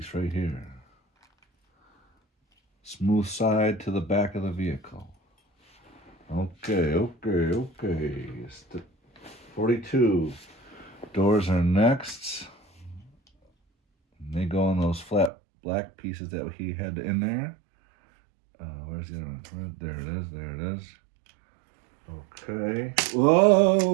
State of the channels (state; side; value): drops out; left; at 15.3 s